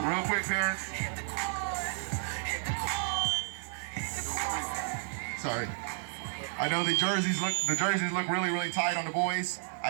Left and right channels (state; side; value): silent; left; 56 dB below the other